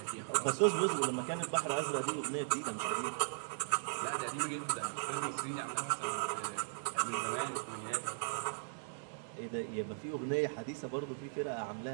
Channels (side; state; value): left; silent; digital silence